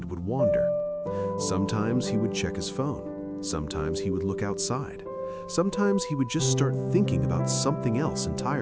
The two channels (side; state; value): both; identical; correlation 1.00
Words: would wander. Sometimes he would check his phone. Sometimes he would look outside. Sometimes he would just start thinking about something else